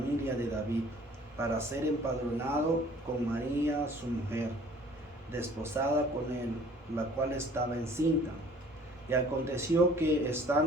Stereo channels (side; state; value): both; normal; correlation 0.53